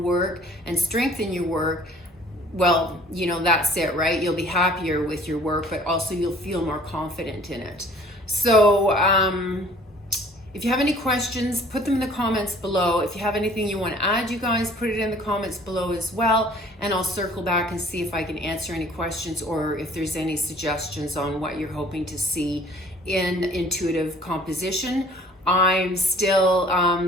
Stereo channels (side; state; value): both; normal; correlation 0.53